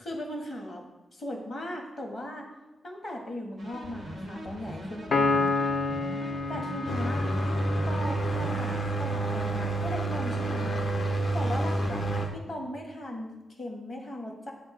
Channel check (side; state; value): both; normal; correlation 0.77